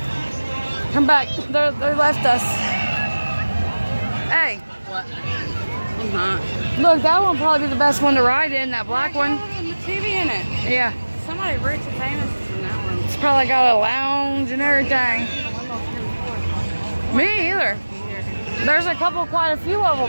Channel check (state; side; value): inverted; both; correlation -1.00